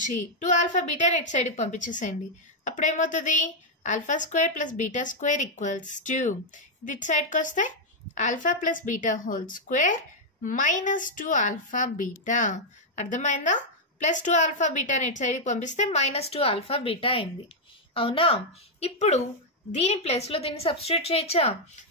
2 ఆల్ఫా బీటాని ఇటు సైడ్కి పంపించేసేయండి. అప్పుడు ఏమవుతుంది? Alpha square plus beta square equals 2. ఇది ఇటు సైడ్కి వస్తే alpha plus beta whole square minus 2 alpha beta. అర్థమైందా? ప్లస్ 2 ఆల్ఫా బీటాని ఇటు సైడ్కి పంపిస్తే -2 ఆల్ఫా బీటా అయింది. అవునా? ఇప్పుడు దీని ప్లేస్లో దీన్ని సబ్స్టిట్యూట్ చేయొచ్చా?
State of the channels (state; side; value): normal; both; correlation -0.02